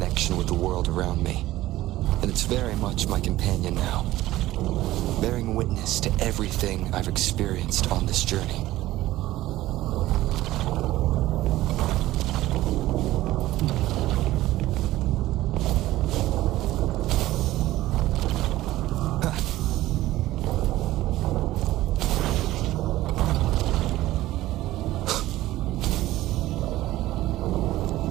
with the world around me, and it's very much my companion now, bearing witness to everything I've experienced on this journey.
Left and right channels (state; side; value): quieter; left; 16.0 dB